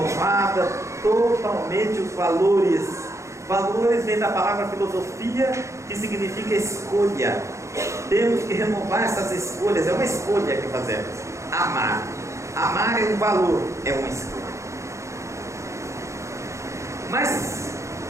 totalmente os valores. Valores vem da palavra filosofia, que significa escolha. Temos que renovar essas escolhas. É uma escolha que fazemos. Amar. Amar é um valor, é uma escolha. Mas,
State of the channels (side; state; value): left; late; 0.14 ms